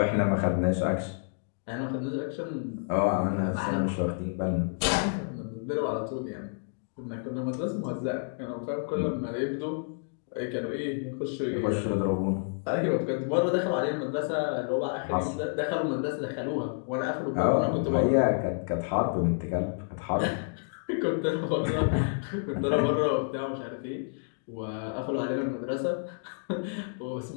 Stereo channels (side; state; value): right; silent; digital silence